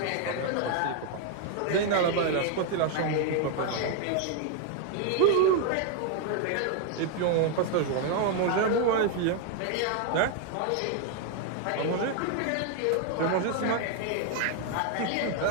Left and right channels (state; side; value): different; both; correlation 0.00